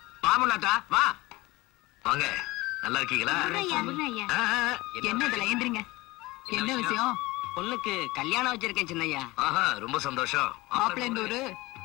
பாமுனாத்தா வா. வாங்க. நல்லா இருக்கீங்களா? என்ன இதுல ஏந்திரிங்க. என்ன விஷயம்? பொண்ணுக்கு கல்யாணம் வச்சிருக்கேன் சின்னையா. ஆஹா ரொம்ப சந்தோஷம். மாப்பிள்ளை இந்த ஊரு?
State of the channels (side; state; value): right; quieter; 20.8 dB